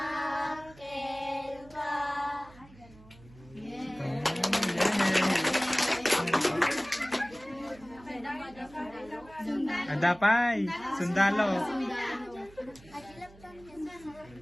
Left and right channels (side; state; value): right; noise; hum, 23 dB below the sound